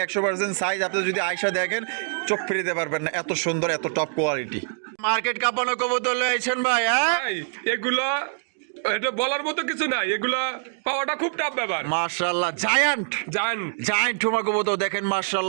100% সাইজ। আপনি যদি আয়সা দেখেন চোখ ফিরিতে পারবেন না, এত সুন্দর এত টপ কোয়ালিটি। মার্কেট কাঁপানো কবুতর লয়েছেন ভাই। হ্যাঁ এগুলা এটা বলার মতো কিছু নাই, এগুলা পাওয়াটা খুব টাফ ব্যাপার। মাশাআল্লাহ জায়ান্ট জায়ান্ট ঠোমা কবুতর দেখেন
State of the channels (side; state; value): left; silent; digital silence